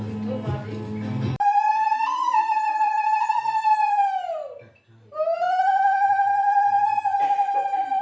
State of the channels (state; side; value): identical; both; correlation 1.00